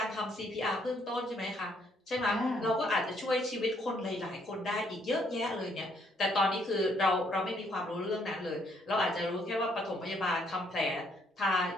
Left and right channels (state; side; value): normal; both; correlation 0.69